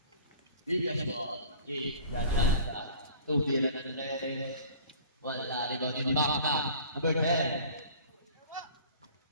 Bigas ball. Jake, Gachanta. Tubira na ni Reyes. Wala rebound ni Maka. Number 10.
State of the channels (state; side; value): inverted; both; correlation -0.45